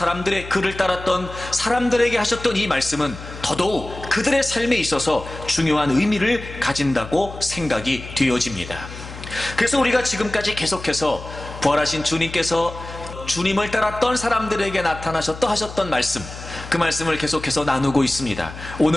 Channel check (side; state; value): left; noise; hum, 13 dB below the sound